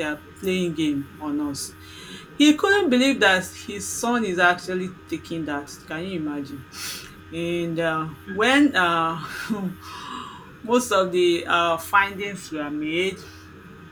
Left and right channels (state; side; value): identical; both; correlation 1.00